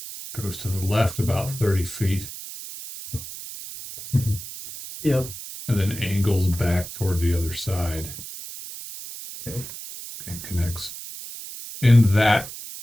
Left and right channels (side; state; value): right; noise; hiss, 11 dB below the sound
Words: Goes to the left about 30 feet, Yep. and then angles back toward the other side. Okay. And connects. In that